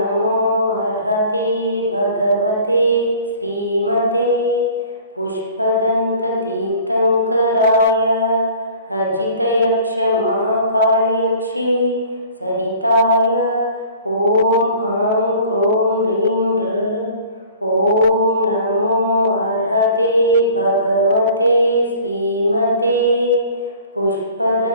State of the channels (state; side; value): inverted; both; correlation -0.48